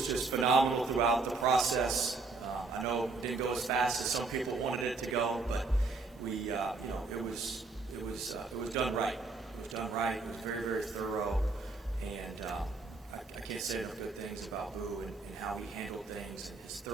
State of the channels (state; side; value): quieter; left; 3.8 dB